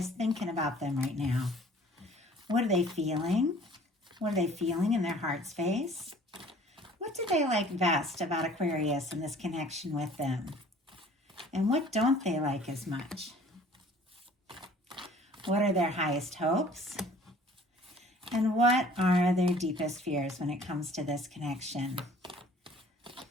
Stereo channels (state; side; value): normal; both; correlation 0.52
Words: thinking about them right now? What are they feeling? What are they feeling in their heart space? What do they like best about Aquarius and this connection with them? And what don't they like as much? What are their highest hopes? And what are their deepest fears when it comes to this connection?